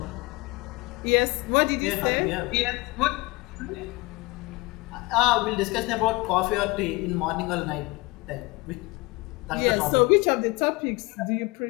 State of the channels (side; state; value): right; quieter; 24.0 dB